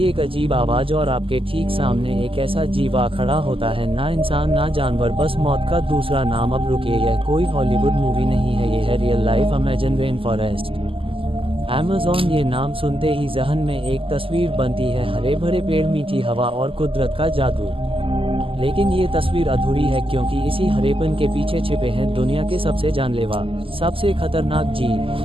एक अजीब आवाज और आपके ठीक सामने एक ऐसा जीवा खड़ा होता है, ना इंसान ना जानवर, बस मौत का दूसरा नाम। अब रुकिए, यह कोई हॉलीवुड मूवी नहीं है, ये है real life Amazon rain forest. Amazon, ये नाम सुनते ही जहन में एक तस्वीर बनती है, हरे भरे पेड़, मीठी हवा और कुदरत का जादू। लेकिन ये तस्वीर अधूरी है, क्योंकि इसी हरेपन के पीछे छिपे हैं दुनिया के सबसे जानलेवा, सबसे खतरनाक जीव,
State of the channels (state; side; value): late; left; 0.26 ms